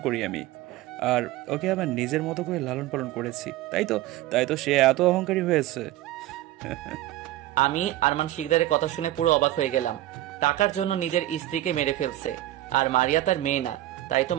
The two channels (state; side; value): quieter; left; 15.2 dB